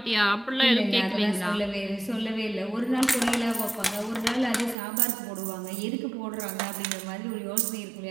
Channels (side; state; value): left; drops out; at 4.8 s